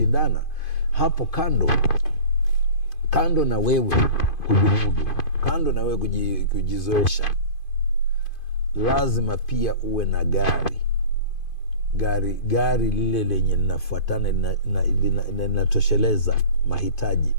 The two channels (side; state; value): right; late; 2.5 ms